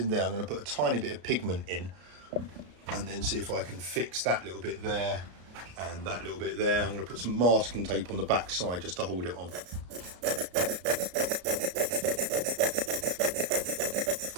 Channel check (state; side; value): late; left; 33 ms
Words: there. I'm going to put a tiny bit of pigment in and then see if I can fix that little bit there and that little bit there. I'm going to put some masking tape on the back side just to hold it on.